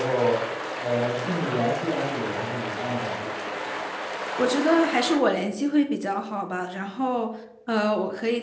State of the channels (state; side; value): identical; both; correlation 1.00